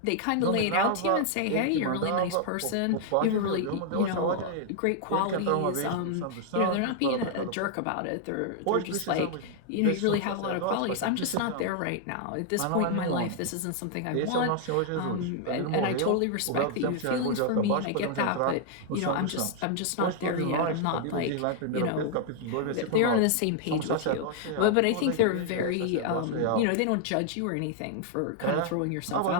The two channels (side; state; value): both; different; correlation 0.00